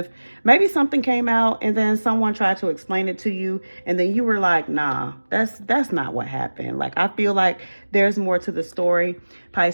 maybe something came out and then someone tried to explain it to you. And then you were like, nah, that's not what happened. Like, I feel like there's more to the story.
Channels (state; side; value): inverted; both; correlation -1.00